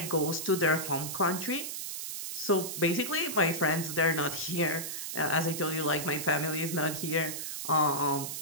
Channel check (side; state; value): right; noise; hiss, 5 dB below the sound